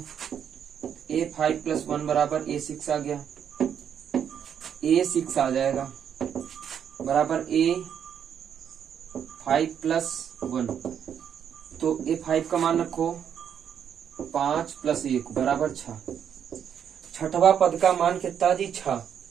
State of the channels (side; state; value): left; quieter; 8.5 dB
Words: a5 प्लस 1 बराबर a6 आ गया, a6 आ जाएगा बराबर a5 प्लस 1, तो a5 का मान रखो 5 प्लस 1 बराबर 6। छठवां पद का मान कितना जी, 6।